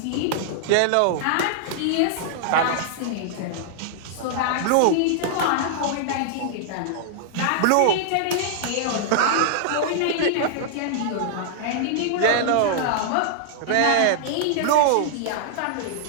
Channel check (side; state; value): both; different; correlation -0.01